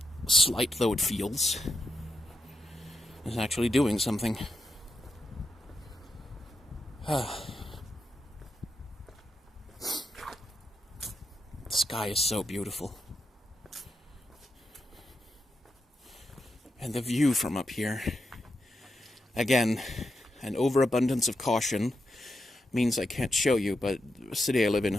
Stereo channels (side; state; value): both; normal; correlation 0.85